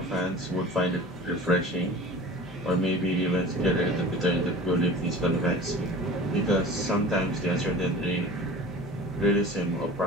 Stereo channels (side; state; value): both; normal; correlation 0.39